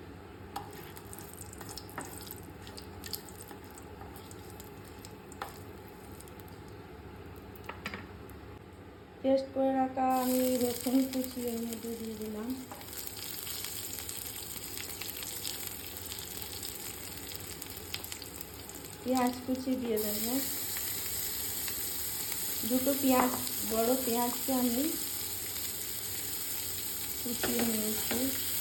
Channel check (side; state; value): both; identical; correlation 1.00